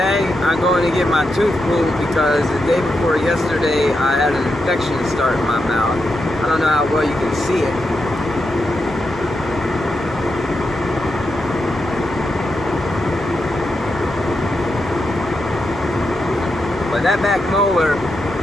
I'm going to get my tooth pulled because the day before yesterday I had an infection start in my mouth. I don't know how well you can see it. But that back molar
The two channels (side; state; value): both; normal; correlation 0.85